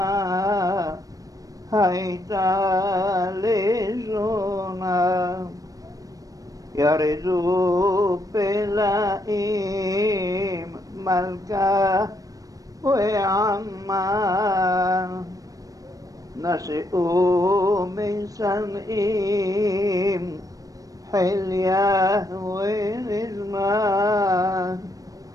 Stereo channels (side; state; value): left; late; 0.17 ms